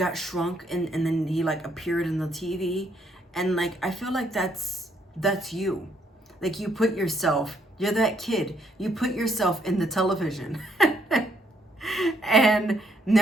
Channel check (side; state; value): both; normal; correlation 0.71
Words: shrunk and then he like appeared in the TV, and like I feel like that's you. Like you put yourself, you're that kid. You put yourself in the television. And